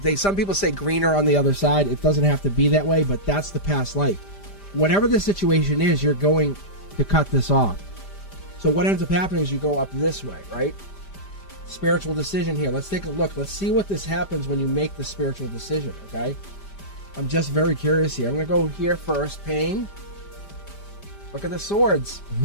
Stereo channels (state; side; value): late; right; 5.0 ms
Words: Some people say greener on the other side. It doesn't have to be that way, but that's the past life. Whatever the situation is, you're going to cut this off. So what ends up happening is you go up this way, right? Spiritual decision here. Let's take a look. Let's see what this happens when you make the spiritual decision, okay? I'm just very curious here. I'm going to go here first. Pain. Look at the swords.